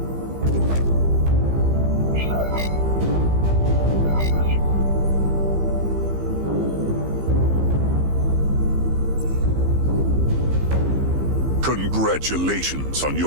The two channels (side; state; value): left; late; 15 ms